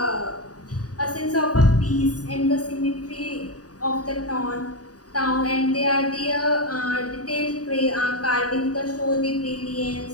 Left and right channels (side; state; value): right; late; 0.68 ms